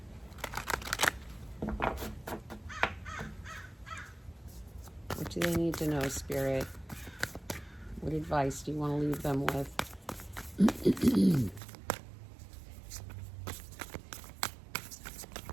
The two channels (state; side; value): drops out; left; at 11.6 s